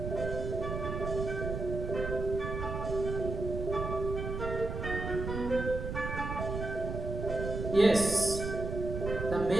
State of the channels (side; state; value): right; noise; rumble, 5 dB below the sound